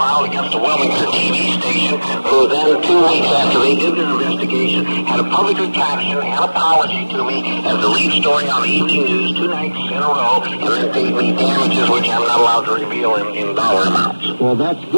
against a Wilmington TV station, who then 2 weeks after they did their investigation had a public retraction and apology to me as the lead story on the evening news 2 nights in a row, and then paid me damages which I'm not allowed to reveal in dollar amounts. Well, that's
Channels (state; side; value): inverted; both; correlation -1.00